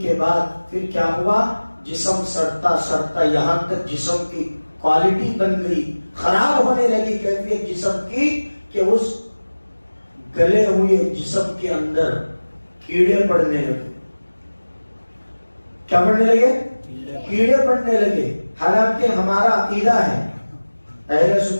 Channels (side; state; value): both; inverted; correlation -1.00